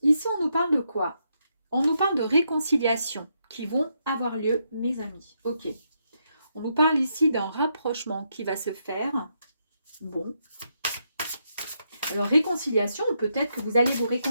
ici on nous parle de quoi? On nous parle de réconciliation qui vont avoir lieu, mes amis. Ok. On nous parle ici d'un rapprochement qui va se faire. Bon. Alors, réconciliation, peut-être que vous allez vous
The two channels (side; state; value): both; inverted; correlation -0.79